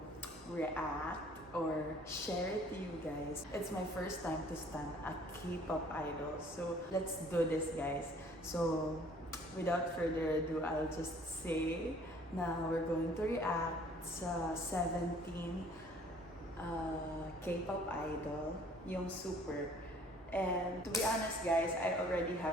react or share it to you guys. It's my first time to stand a K-pop idol. So let's do this, guys. So without further ado, I'll just say na we're going to react sa 17 K-pop idol, yung Super. And to be honest, guys, I already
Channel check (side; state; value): both; normal; correlation 0.55